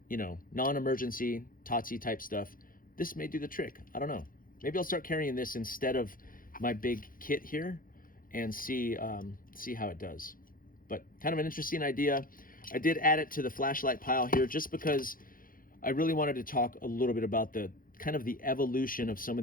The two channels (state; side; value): late; right; 0.41 ms